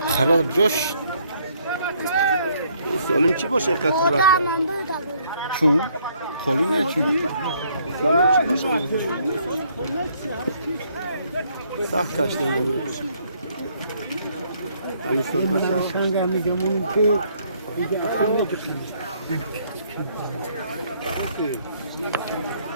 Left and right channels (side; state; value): both; inverted; correlation -0.66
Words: خراب جوش سالم چی باشه اینقدر صورت چون خالی نه چون سالم چی باشه سخت کشته نمیشه علی سرمه سخت